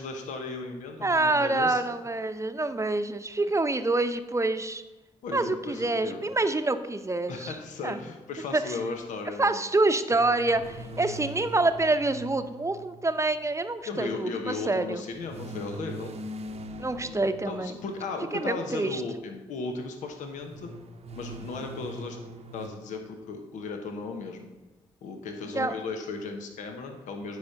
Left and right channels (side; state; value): both; normal; correlation 0.61